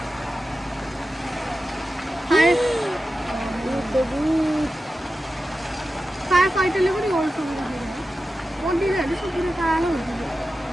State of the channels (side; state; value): both; normal; correlation 0.92